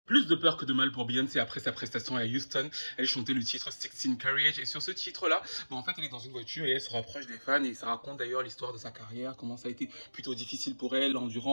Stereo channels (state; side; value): inverted; both; correlation -1.00